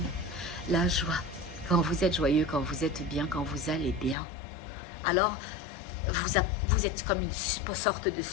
la joie. Quand vous êtes joyeux, quand vous êtes bien, quand vous allez bien, alors vous êtes comme une sorte de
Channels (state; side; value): drops out; right; at 4.2 s